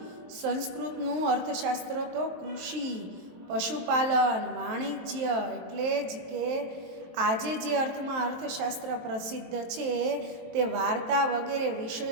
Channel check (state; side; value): late; left; 23 ms